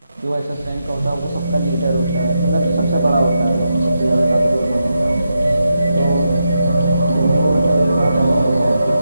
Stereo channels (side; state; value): both; inverted; correlation -0.86